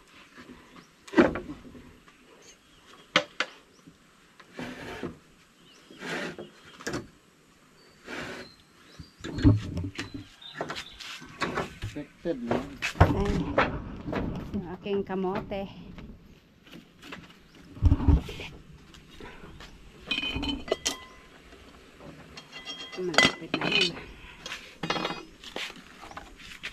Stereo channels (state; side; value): identical; both; correlation 1.00